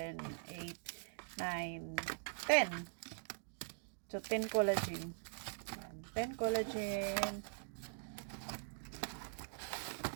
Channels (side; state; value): left; silent; digital silence